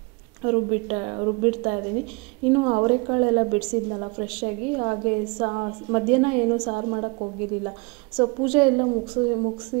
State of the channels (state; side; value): quieter; left; 28.7 dB